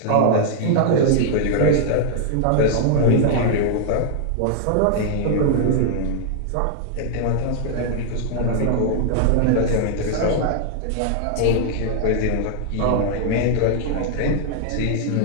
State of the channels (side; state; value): both; different; correlation 0.00